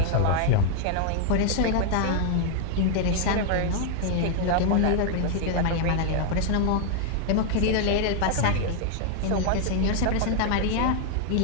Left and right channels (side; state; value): both; different; correlation 0.00